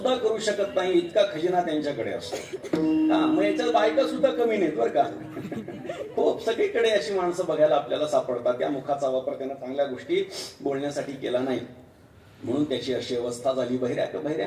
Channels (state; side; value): identical; both; correlation 1.00